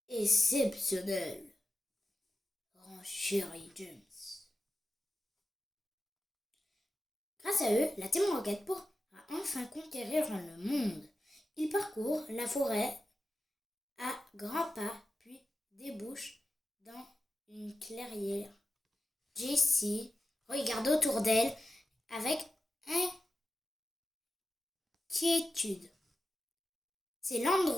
exceptionnels, renchérit James. Grâce à eux, la Team Rocket pourra enfin conquérir le monde. Ils parcourent la forêt à grands pas, puis débouchent dans une clairière. Jessie regarde autour d'elle avec inquiétude. C'est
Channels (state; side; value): normal; both; correlation 0.92